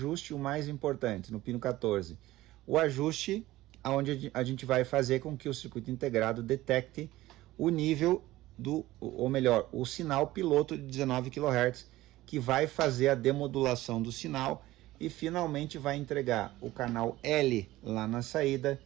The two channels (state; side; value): quieter; left; 16.9 dB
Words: o mais importante, no pino 14, o ajuste onde a gente vai fazer com que o circuito integrado detecte o nível ou melhor, o sinal piloto de 19 kHz, que vai fazer a demodulação do sinal e finalmente vai entregar o canal L lá na saída